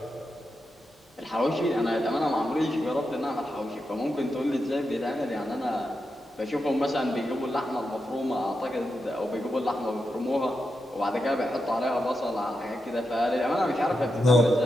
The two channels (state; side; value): normal; both; correlation 0.87